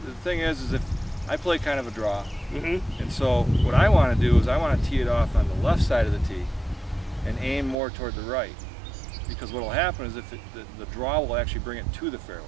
thing is if I play kind of a draw, and so what I want to do is I want to tee it off on the left side of the tee and aim more toward the right, because what will happen is if the draw will actually bring it to the fairway.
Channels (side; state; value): left; drops out; at 7.8 s